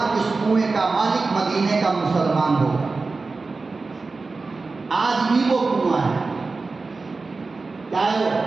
اس کنویں کا مالک مدینے کا مسلمان ہوگا۔ آج بھی وہ کنواں ہے۔ کیا ہے وہ؟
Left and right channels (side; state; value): left; quieter; 3.9 dB